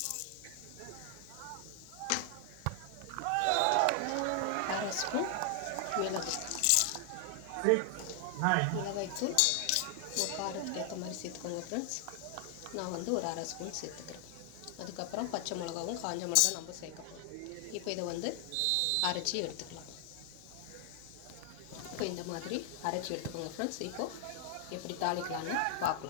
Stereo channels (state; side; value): different; both; correlation 0.00